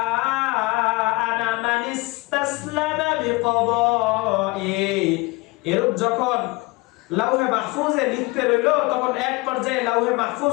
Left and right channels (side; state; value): right; quieter; 24.2 dB